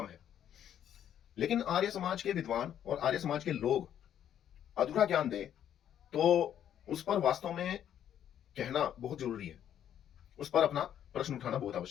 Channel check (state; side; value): quieter; right; 10.1 dB